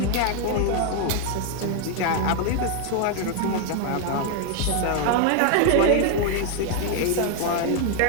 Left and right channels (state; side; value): different; both; correlation 0.01